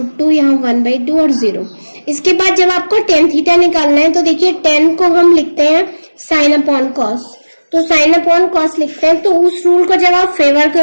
यहाँ 1/2 और 0। इसके बाद जब आपको tan थीटा निकालना है तो देखिए tan को हम लिखते हैं साइन अपॉन कॉस, तो साइन अपॉन कॉस लिखते हैं। तो उस रूल को जब आप फेवर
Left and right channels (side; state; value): both; inverted; correlation -1.00